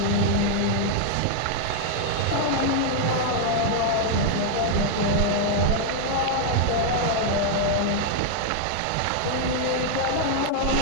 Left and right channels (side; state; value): both; different; correlation 0.00